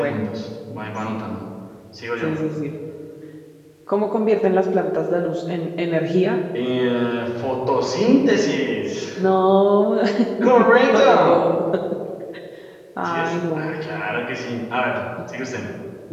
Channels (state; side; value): identical; both; correlation 1.00